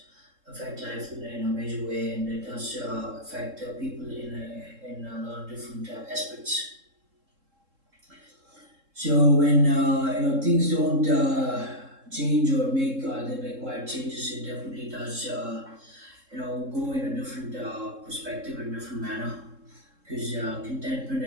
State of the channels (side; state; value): left; late; 3.7 ms